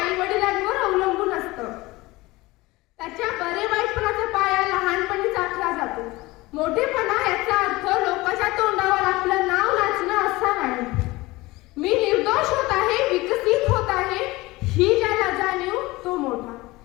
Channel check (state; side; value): quieter; right; 20.8 dB